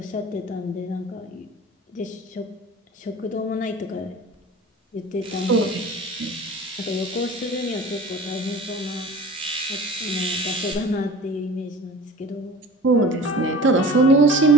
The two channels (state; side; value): normal; both; correlation 0.40